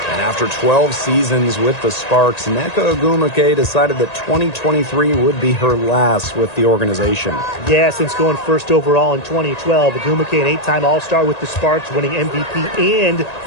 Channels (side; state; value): right; late; 1.9 ms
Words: after 12 seasons with the Sparks, Nneka Ogwumike decided that 2023 would be her last with the organization. Yeah, since going first overall in 2012, Ogwumike, an 8-time All-Star with the Sparks, winning MVP and